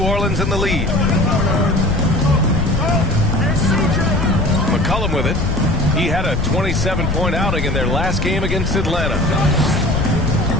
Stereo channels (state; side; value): noise; left; rumble, 4 dB below the sound